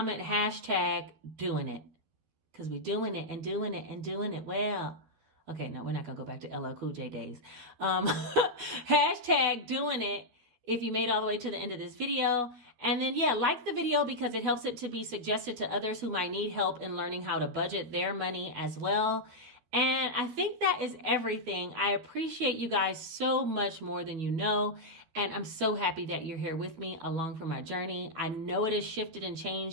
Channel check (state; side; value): late; left; 13 ms